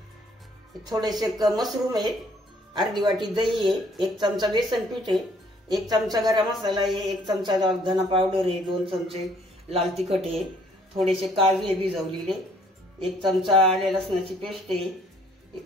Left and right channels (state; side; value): normal; both; correlation 0.62